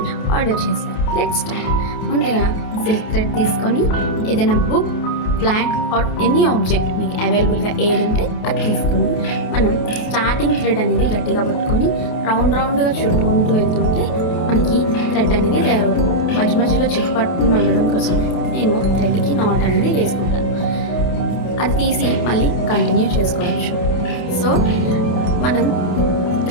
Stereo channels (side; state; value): right; late; 28 ms